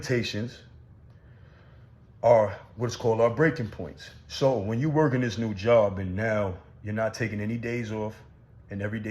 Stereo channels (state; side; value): identical; both; correlation 1.00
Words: are what's called our breaking points. So when you work in this new job and now you're not taking any days off, and every